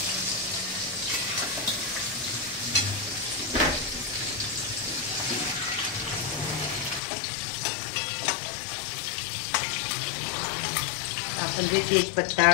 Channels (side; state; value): right; drops out; at 7.0 s